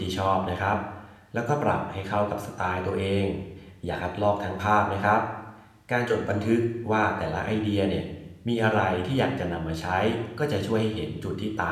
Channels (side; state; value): both; identical; correlation 1.00